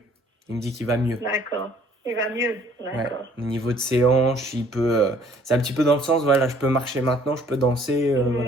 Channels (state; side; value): normal; both; correlation 0.59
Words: Il me dit qu'il va mieux. d'accord. Il va mieux. Ouais. D'accord. Au niveau de ses hanches, il peut. C'est un petit peu dans le sens, voilà, je peux marcher maintenant, je peux danser,